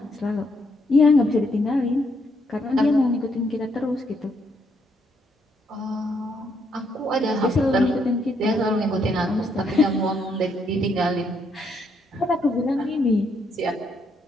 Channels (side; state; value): both; normal; correlation 0.74